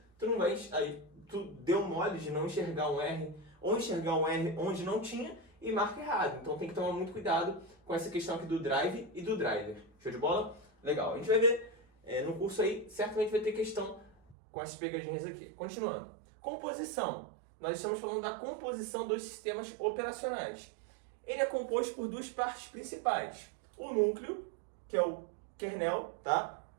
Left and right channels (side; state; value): left; drops out; at 14.4 s